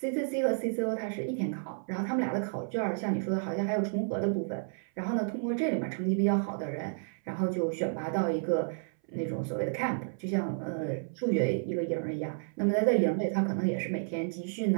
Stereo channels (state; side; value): silent; left; 57 dB below the other